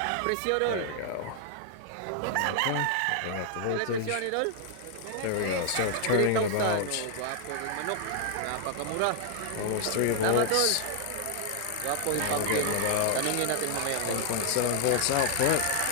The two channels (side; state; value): both; different; correlation 0.00